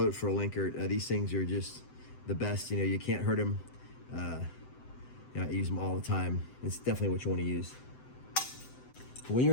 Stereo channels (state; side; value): late; right; 7.8 ms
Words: for a Linkert. These things are just the best. You know, you can't hurt them. You know, I use them all the time. It's definitely what you want to use. When you're